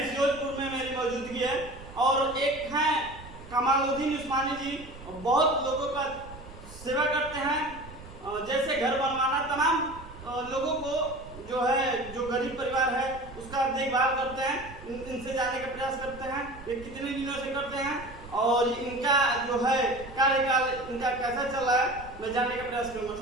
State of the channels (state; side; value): noise; right; rumble, 16 dB below the sound